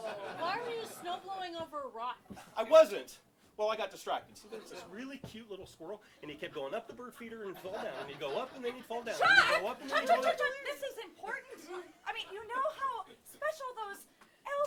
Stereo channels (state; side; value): identical; both; correlation 1.00